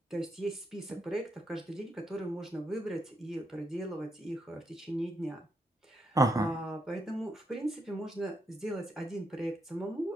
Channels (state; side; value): normal; both; correlation 0.79